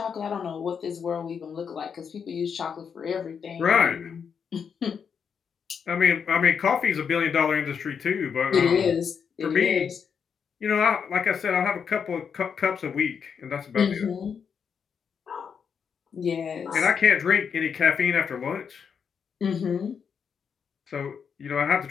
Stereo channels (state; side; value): quieter; right; 6.7 dB